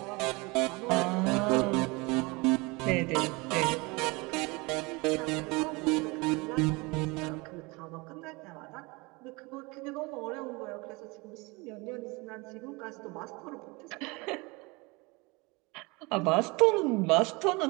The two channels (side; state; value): left; quieter; 26.0 dB